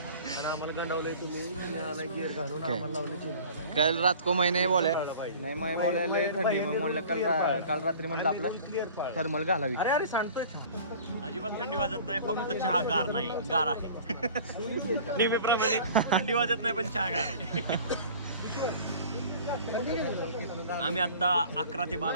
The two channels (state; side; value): inverted; both; correlation -0.45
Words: कल रात को मैंने बोले नाही मैं बोले लय थंडी मग म्हणलं काल रात्री म्हणलं आपलं थर्मल घालावी. अरे सांगतोय अजिबात थंडी वाजत नाही, फक्त चहा गार नाही, गार आहे. नेहमीप्रमाणे थंडी वाजत नाही पण चहा गार आहे. आम्ही आता 11 ते